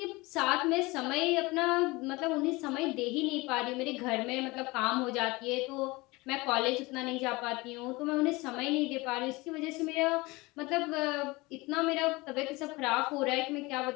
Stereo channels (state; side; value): quieter; right; 22.9 dB